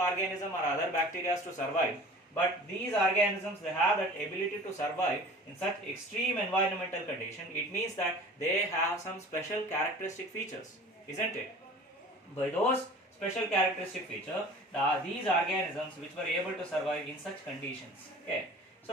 or other bacteria to survive. But these organisms, they have that ability to survive in such extreme environmental condition. It means that they have some special characteristic features, isn't it? By those special characteristic feature, these organisms which were able to survive in such conditions. Okay,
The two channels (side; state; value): both; normal; correlation 0.43